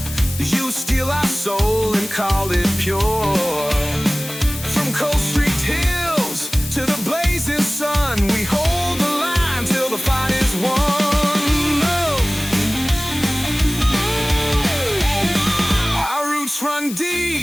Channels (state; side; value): noise; left; hiss, 12 dB below the sound